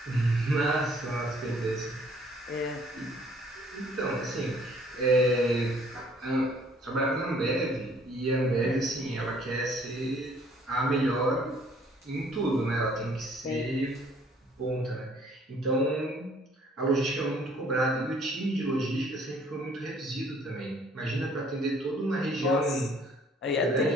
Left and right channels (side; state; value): both; normal; correlation 0.60